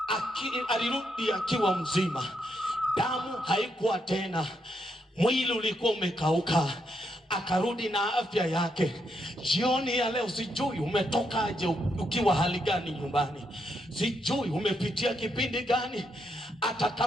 alirudi akiwa mzima. Damu haikuwa tena, mwili ulikuwa umekauka, akarudi na afya yake. Jioni ya leo sijui umetokaje, ukiwa hali gani nyumbani, sijui umepitia kipindi gani. Hata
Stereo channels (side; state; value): both; normal; correlation 0.79